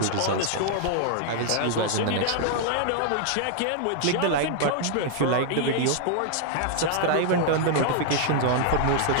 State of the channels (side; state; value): both; different; correlation 0.00